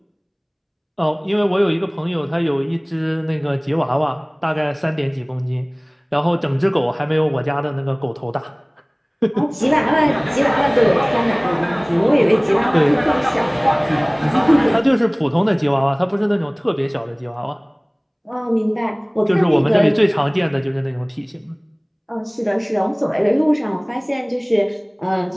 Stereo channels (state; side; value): identical; both; correlation 1.00